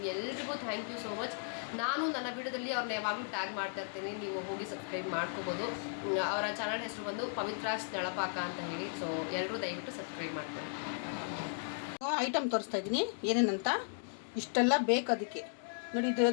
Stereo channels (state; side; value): silent; right; digital silence